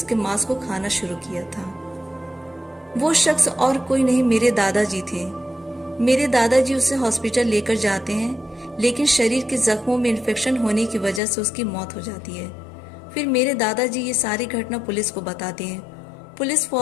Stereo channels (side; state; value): right; drops out; at 11.2 s